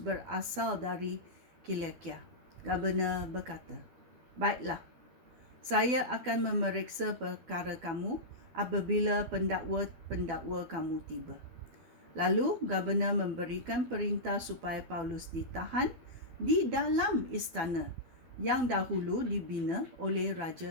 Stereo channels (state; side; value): late; left; 12 ms